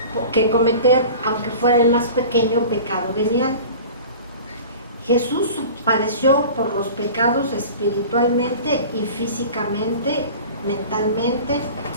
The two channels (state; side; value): inverted; both; correlation -0.39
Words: que cometer, aunque fuera el más pequeño pecado venial. Jesús padeció por los pecados espiritualmente y físicamente, mentalmente